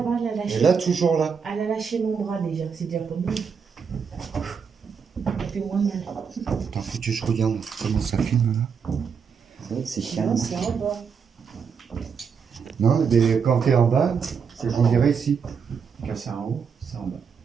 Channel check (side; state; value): left; quieter; 6.3 dB